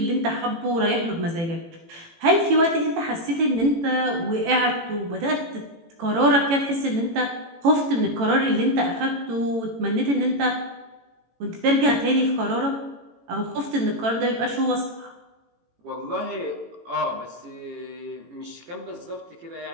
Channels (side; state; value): left; late; 18 ms